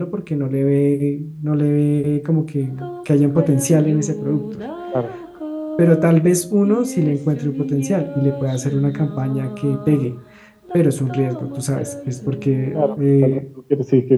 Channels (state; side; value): identical; both; correlation 1.00